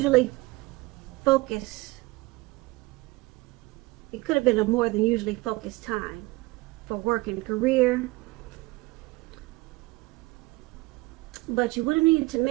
focused time for work and career. But you would have needed to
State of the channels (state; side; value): quieter; left; 22.2 dB